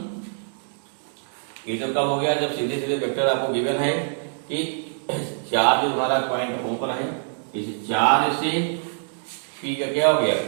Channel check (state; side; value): silent; left; digital silence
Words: ये तो कब हो गया, जब सीधे सीधे वेक्टर आपको गिवन है कि चार्ज तुम्हारा पॉइंट ओ पर है, इस चार्ज से पी का क्या हो गया,